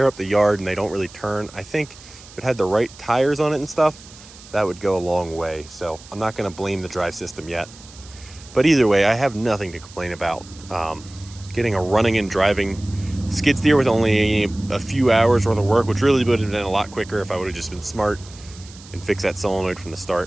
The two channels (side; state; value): right; noise; hiss, 20 dB below the sound